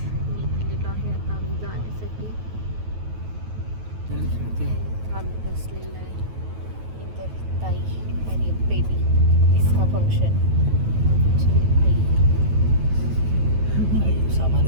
निघालेलो आहे आता आम्ही जाण्यासाठी. आम्ही बसलेलं आहे इतर ताई आणि बेबी. इसका फंक्शन आई सामान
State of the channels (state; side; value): late; left; 9.3 ms